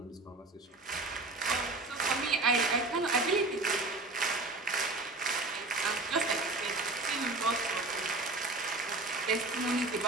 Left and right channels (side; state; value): left; quieter; 3.2 dB